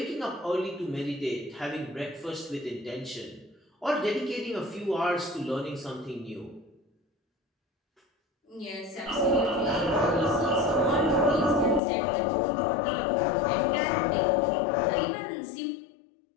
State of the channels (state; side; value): drops out; right; at 11.8 s